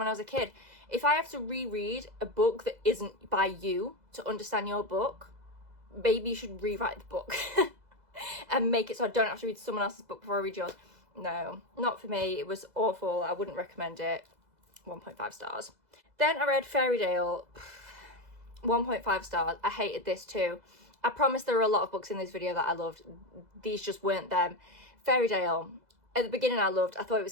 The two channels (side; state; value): left; late; 2.0 ms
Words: I was a kid. If I have to reread a book that isn't by you to understand your book, maybe you should rewrite the book and make it so I don't have to read someone else's book before I read yours. No, not for me. It was awful. I wouldn't recommend it. 1.5 stars. Then I read Fairytale. 1.5 stars. I hated this too. I promise there are a lot of books in this video that I loved. These just weren't them. Fairytale. At the beginning I loved. I thought it